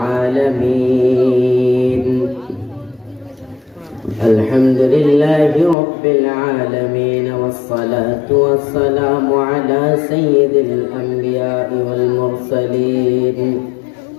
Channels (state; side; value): drops out; right; at 5.8 s